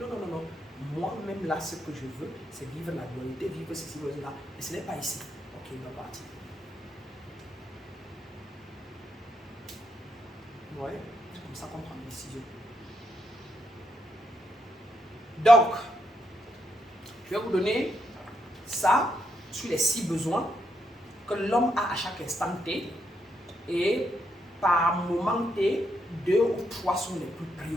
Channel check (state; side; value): normal; both; correlation 0.79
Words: non, non, non. Moi-même, là, ce que je veux, c'est vivre la dualité, vivre ceci, vivre cela. Et ce n'est pas ici. Ok, il va partir. Ouais, c'est comme ça qu'on prend une décision. Donc, je vais vous donner ça sur les 6 besoins que l'homme a à chaque instant T. Et par moment T, 2 ou 3 sont les plus